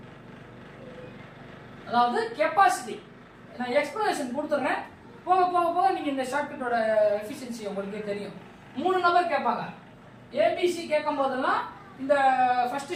அதாவது கெபாசிட்டி. நான் எக்ஸ்பிளனேஷன் கொடுத்துறேன், போக போக போக நீங்க இந்த ஷார்ட்கட்டோட எஃபிஷியன்சி உங்களுக்கே தெரியும். 3 நம்பர் கேட்பாங்க. ABC கேட்கும் போதெல்லாம் இந்த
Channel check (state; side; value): identical; both; correlation 1.00